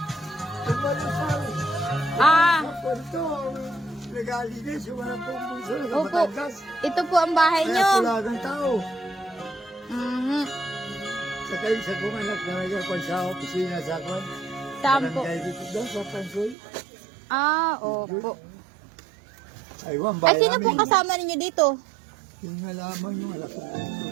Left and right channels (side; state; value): left; drops out; at 16.6 s